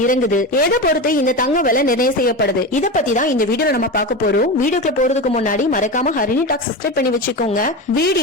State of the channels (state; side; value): normal; both; correlation 0.22